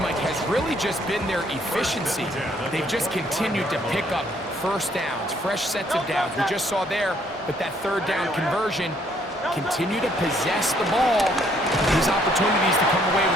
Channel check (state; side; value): normal; both; correlation 0.66